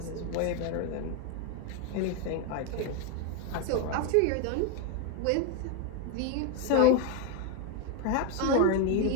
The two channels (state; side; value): different; both; correlation 0.01